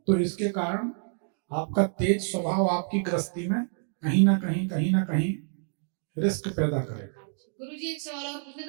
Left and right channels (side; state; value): left; silent; digital silence